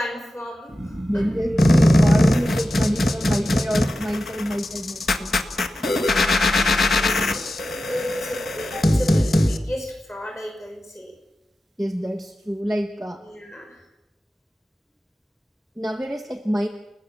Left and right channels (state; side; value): normal; both; correlation 0.92